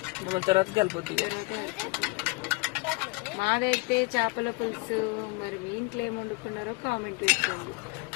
తర్వాత కలిపొద్దు మాదైతే చేపల పులుసు మరి మీ ఇంట్లో ఏమి వండుకున్నారో కామెంట్ పెట్టండి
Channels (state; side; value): quieter; right; 25.5 dB